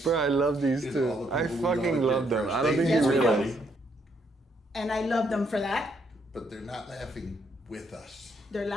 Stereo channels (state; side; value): normal; both; correlation 0.73